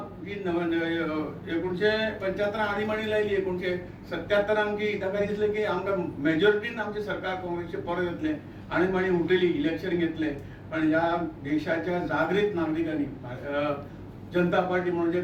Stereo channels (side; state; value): both; identical; correlation 1.00